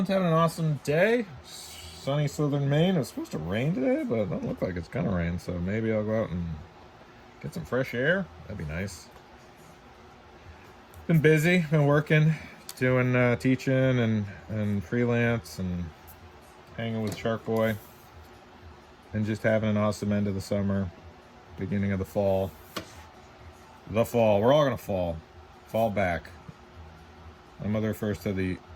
having an awesome day. Sunny southern Maine. It was supposed to rain today, but it doesn't look like it's gonna rain. So maybe I'll go out and get some fresh air. That'd be nice. Been busy, been working, doing teaching and freelance and hanging with Shark Boy. And just having an awesome end of the summer, beginning of the fall. The fall. We're all gonna fall. Fall back. My mother refers to the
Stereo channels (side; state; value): both; identical; correlation 1.00